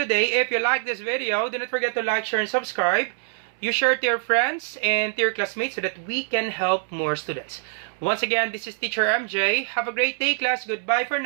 If you like this video, do not forget to like, share, and subscribe. You share to your friends and to your classmates so that we can help more students. Once again, this is Teacher MJ. Have a great day, class. Goodbye for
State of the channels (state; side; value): silent; left; 62 dB below the other